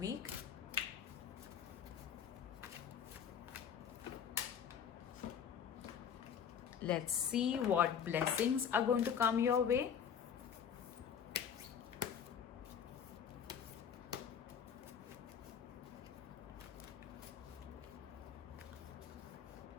Let's see what blessings are going to come your way.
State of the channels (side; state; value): right; quieter; 7.9 dB